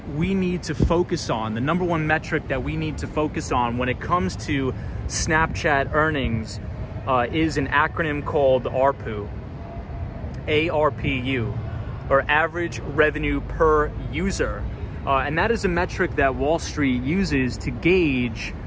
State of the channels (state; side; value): identical; both; correlation 1.00